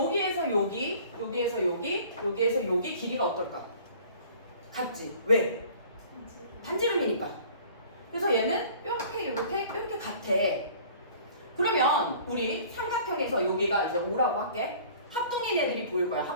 여기, 여기에서 여기, 여기에서 여기 길이가 어떨까? 같지? 왜? 반지름이니까. 그래서 얘는 이렇게 같아. 그러면 우리 삼각형에서 여기가 이제 O라고 할게. 합동인 애들이 보일 거야.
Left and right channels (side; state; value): both; inverted; correlation -0.49